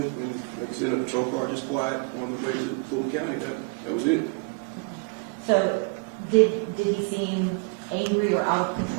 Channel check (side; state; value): left; quieter; 32.8 dB